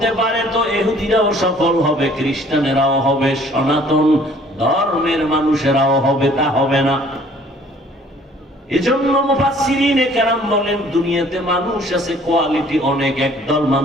পারে তো ইহুদিরাও সফল হবে, খ্রিস্টানেরাও হবে, সনাতন ধর্মের মানুষেরাও হবে, তা হবে না। এজন্য মুফাসসিরিনে কেরাম বলেন দুনিয়াতে মানুষ আছে কোয়ালিটি অনেক, একদল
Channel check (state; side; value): normal; both; correlation 0.56